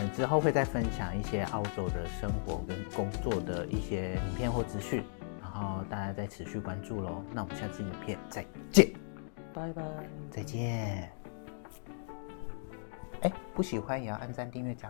之后会再分享一些澳洲的生活跟工作的一些影片或资讯，然后大家再持续关注咯。那我们下次影片再见，拜拜，再见。不喜欢也要按赞、订阅、加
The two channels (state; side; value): silent; right; digital silence